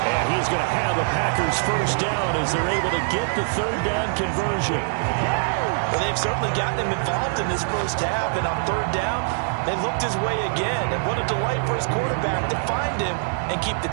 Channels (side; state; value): left; silent; digital silence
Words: And he's going to have a Packers 1st down as they're able to get the 3rd down conversion. Well, they've certainly gotten him involved in this first half, and on 3rd down, they looked his way again. And what a delight for his quarterback to find him and keep the